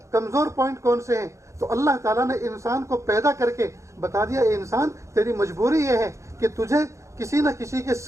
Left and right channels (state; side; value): late; left; 0.14 ms